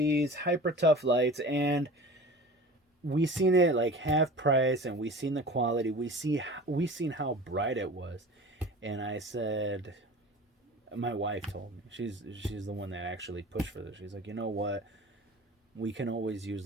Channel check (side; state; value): both; normal; correlation 0.38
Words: Hypertough lights, and we seen it like half price, and we seen the quality. We seen how bright it was, and I said, my wife told me she's the one that actually pushed for this. She's like, you know what? We can always use